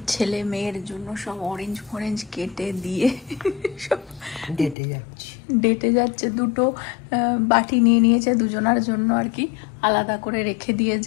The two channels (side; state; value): right; drops out; at 4.8 s